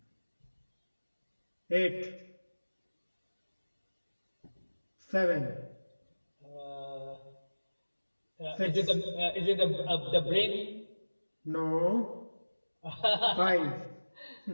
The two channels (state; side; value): inverted; both; correlation -1.00